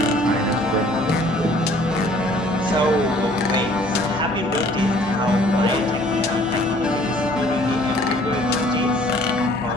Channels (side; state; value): both; normal; correlation 0.56